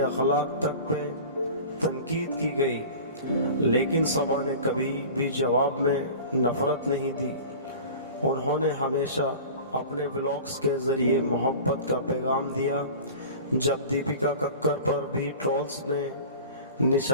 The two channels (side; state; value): both; inverted; correlation -0.37